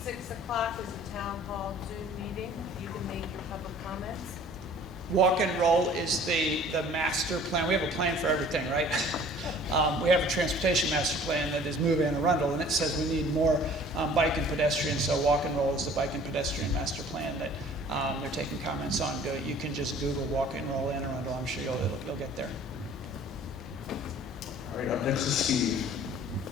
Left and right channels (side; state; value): both; normal; correlation 0.50